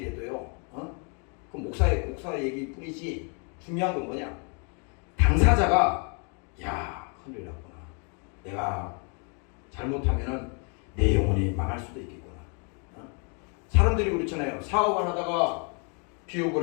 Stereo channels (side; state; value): right; quieter; 37.7 dB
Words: 해도요. 그 목사 얘기 뿐이지 중요한 건 뭐냐? 당사자가 큰일 났구나. 내가 잘못하면은 내 영혼이 망할 수도 있겠구나. 사람들이 그렇잖아요. 사업을 하다가 비옥을